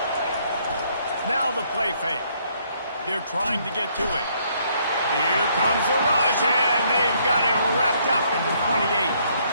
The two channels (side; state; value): both; inverted; correlation -0.68